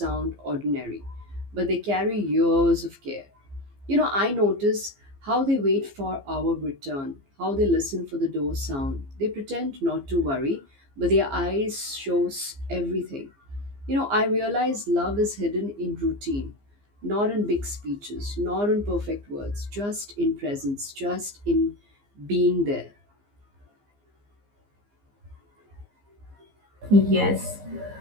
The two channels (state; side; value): late; left; 15 ms